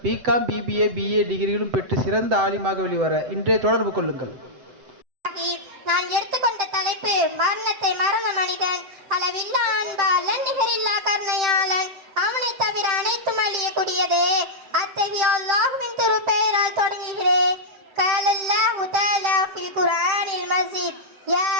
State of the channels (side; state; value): left; late; 7.7 ms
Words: பிகாம், பிபிஏ, பிஏ டிகிரிகளும் பெற்று சிறந்த ஆலிமாக வெளிவர இன்றே தொடர்பு கொள்ளுங்கள். நான் எடுத்துக்கொண்ட தலைப்பு மரணத்தை மறந்த மனிதன், அளவில்லா அன்பாளன், நிகரில்லா கருணையாளன், அவனை தவிர அனைத்தும் அழியக்கூடியதே. அத்தகைய அல்லாஹ்வின் திருப்பெயரால் தொடங்குகிறேன். قال الله تعالى في القرآن المجيد يا